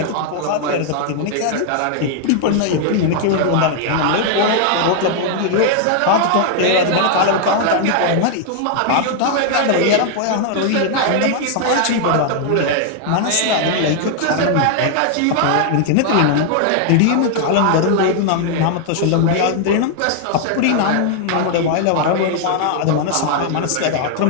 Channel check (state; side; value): different; both; correlation 0.00